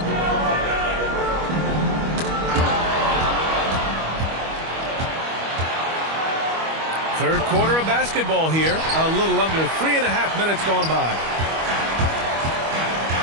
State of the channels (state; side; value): late; left; 25 ms